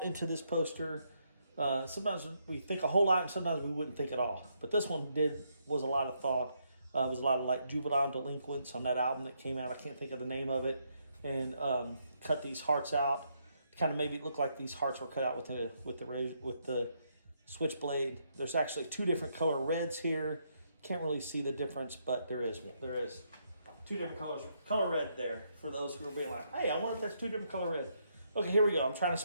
into this poster. Sometimes we think a whole lot, and sometimes we wouldn't think at all. But this one was a lot of thought. It was a lot of like juvenile delinquents on that album that came out. I can't think of the name of it. And cut these hearts out. Kind of maybe it looked like these hearts were cut out with the switchblade. There's actually two different color reds here. Can't really see the difference, but there is two different colors. Color red there for those who are being like, hey, I wonder if that's two different color red. Okay, here we go. I'm trying to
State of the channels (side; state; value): both; inverted; correlation -0.76